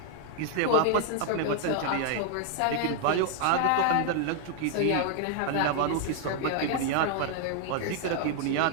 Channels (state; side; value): different; both; correlation 0.00